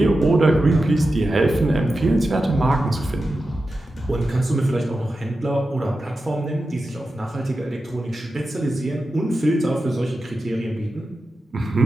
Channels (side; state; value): both; normal; correlation 0.92